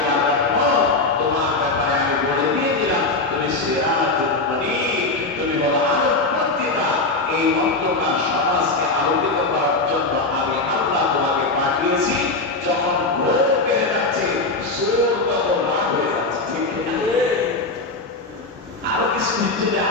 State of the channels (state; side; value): quieter; right; 3.3 dB